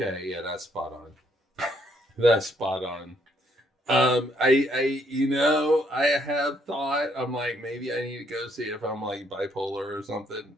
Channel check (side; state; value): both; normal; correlation 0.70